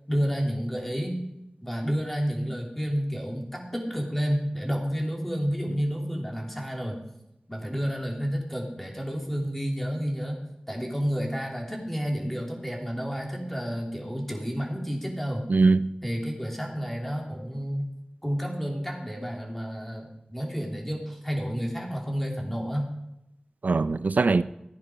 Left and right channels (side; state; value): both; normal; correlation 0.97